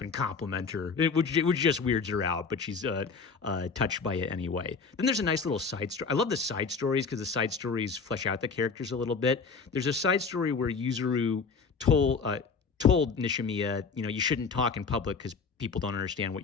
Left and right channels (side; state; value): right; quieter; 5.0 dB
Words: and compliment her, which just weirds her out, but she's touched by it anyway. Then there's a nice little side story. I love the side stories because the side stories flesh out the characters a little bit. There's a side story where Yuzuru told Nishimiya, you shouldn't talk in public because people don't understand what